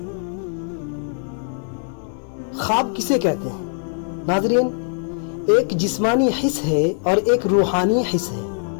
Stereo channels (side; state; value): right; silent; 62 dB below the other